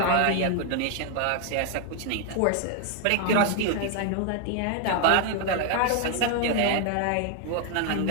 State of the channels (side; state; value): both; different; correlation 0.00